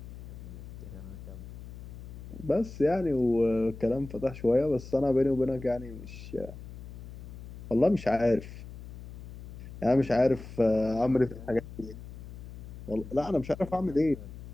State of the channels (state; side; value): noise; left; hum, 13 dB below the sound